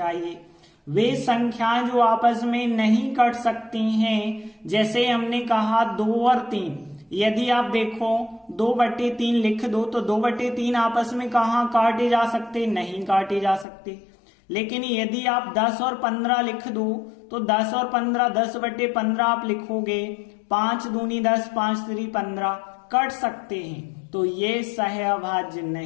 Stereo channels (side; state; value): right; drops out; at 13.7 s